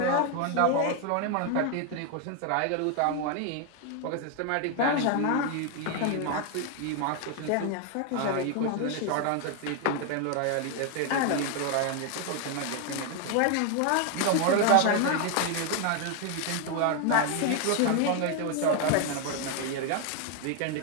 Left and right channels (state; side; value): different; both; correlation 0.01